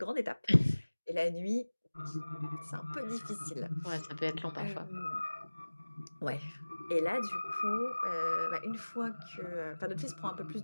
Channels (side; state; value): both; inverted; correlation -1.00